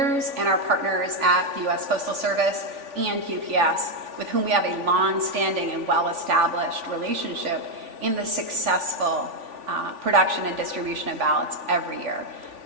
and our partners at the U.S. Postal Service and UPS, with whom we have a long-standing and well-established relationship in the successful production and distribution of ballots every year.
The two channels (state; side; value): late; left; 3.5 ms